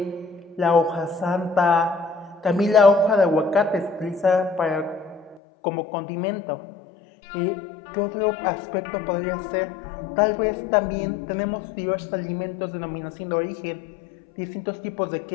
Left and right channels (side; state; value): right; drops out; at 5.4 s